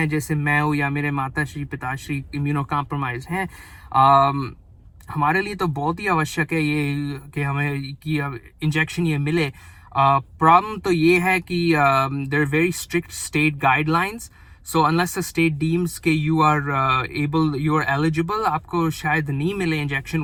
जैसे मैं हूँ या मेरे माताश्री पिताश्री इम्यूनो कॉम्प्रोमाइज़ हैं, हमारे लिए तो बहुत ही आवश्यक है ये कि हमें कि इंजेक्शन ये मिले। प्रॉब्लम तो ये है कि there are very strict state guidelines, so unless the state deems के यू आर एलिजिबल, आपको शायद नहीं मिले इंजेक्शन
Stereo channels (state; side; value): identical; both; correlation 1.00